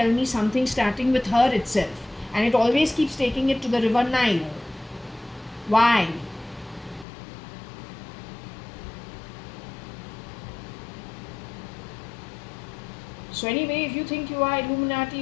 me something starting with her itself, and it always keeps taking it to the river Nile? Why? So anyway, if you think you are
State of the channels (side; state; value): right; drops out; at 7.1 s